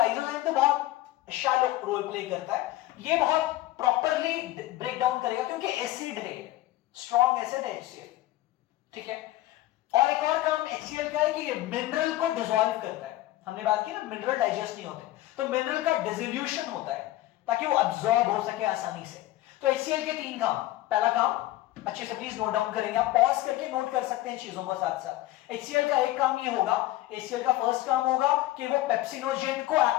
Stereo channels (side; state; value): right; quieter; 16.1 dB